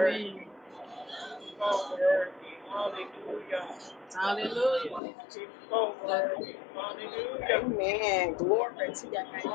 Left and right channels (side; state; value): right; drops out; at 5.0 s